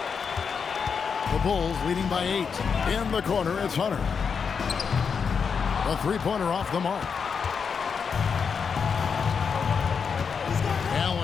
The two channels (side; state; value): right; quieter; 6.1 dB